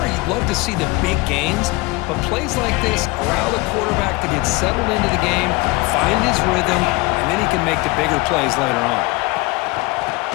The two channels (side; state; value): right; quieter; 23.4 dB